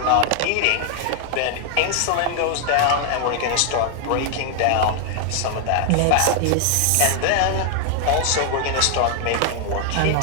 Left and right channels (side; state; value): both; different; correlation 0.00